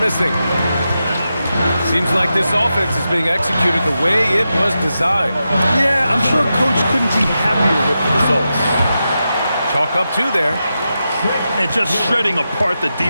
Seems like this offense is being executed the way it was designed. Yeah, I'm sure Coach couldn't be happier with the results. Chalk up 2 there. And just shredding apart the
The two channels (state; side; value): inverted; both; correlation -0.89